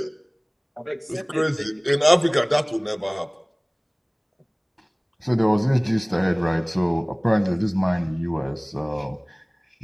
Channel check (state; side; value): identical; both; correlation 1.00